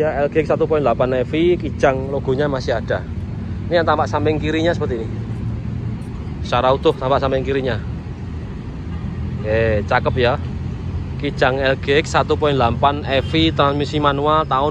LGX 1.8 EV, kijang logonya masih ada. Ini yang tampak samping kirinya seperti ini. Secara utuh tampak samping kirinya. Oke, cakep ya. Kijang LGX 1.8 EV transmisi manual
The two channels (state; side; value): identical; both; correlation 1.00